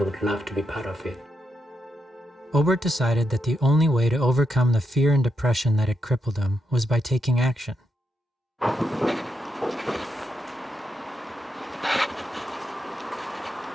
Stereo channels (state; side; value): normal; both; correlation 0.83